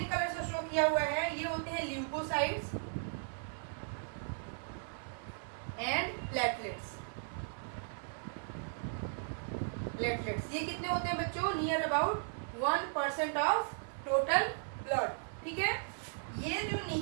कलर से शो किया हुआ है, ये होते हैं ल्यूकोसाइट्स एंड प्लेटलेट्स। प्लेटलेट्स ये कितने होते हैं बच्चों, near about 1% of total blood, ठीक है। ये जो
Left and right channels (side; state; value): left; silent; 53 dB below the other